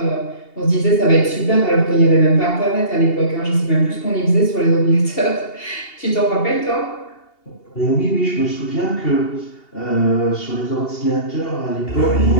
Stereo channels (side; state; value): right; late; 2.8 ms